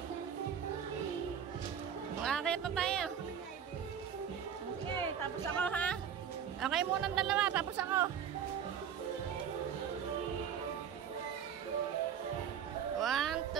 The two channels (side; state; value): left; quieter; 8.2 dB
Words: Makakit na tayo. Sige, tapos ako ha. Okay muna ng dalawa, tapos ako. 1,